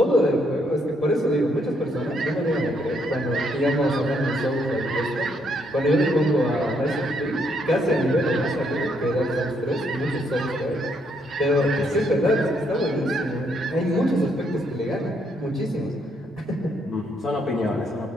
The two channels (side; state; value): both; normal; correlation 0.73